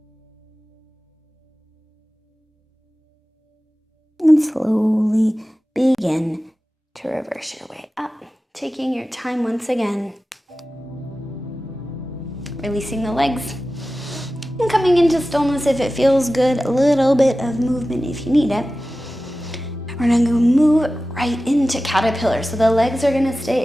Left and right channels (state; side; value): normal; both; correlation 0.95